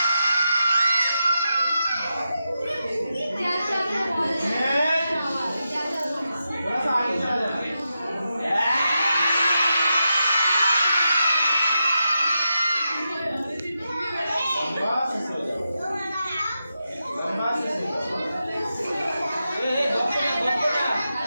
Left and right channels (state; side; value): inverted; both; correlation -0.88